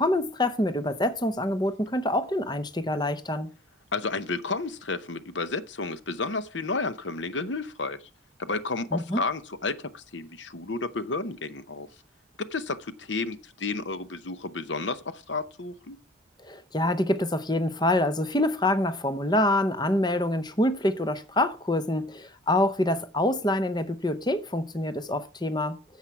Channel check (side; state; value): both; normal; correlation 0.45